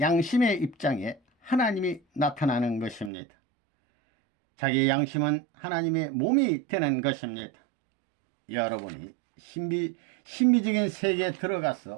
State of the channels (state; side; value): drops out; left; at 3.1 s